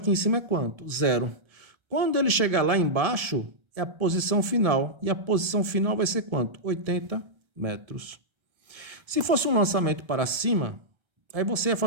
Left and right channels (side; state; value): left; late; 1.3 ms